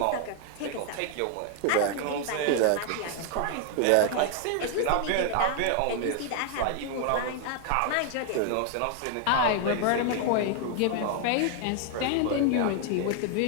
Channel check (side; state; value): both; different; correlation 0.00